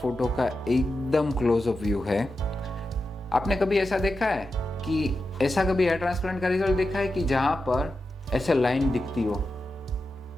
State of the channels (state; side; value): normal; both; correlation 0.90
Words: का एकदम क्लोजअप व्यू है। आपने कभी ऐसा देखा है कि ऐसा कभी हेयर ट्रांसप्लांट का रिजल्ट देखा है कि जहाँ पर ऐसे लाइन दिखती हो,